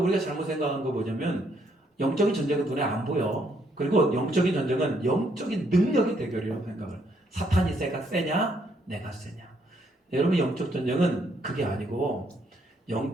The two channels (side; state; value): both; normal; correlation 0.71